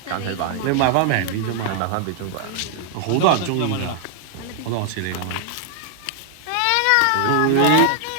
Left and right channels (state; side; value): different; both; correlation 0.00